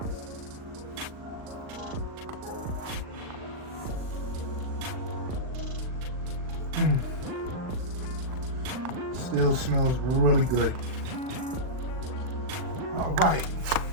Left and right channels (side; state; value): left; late; 39 ms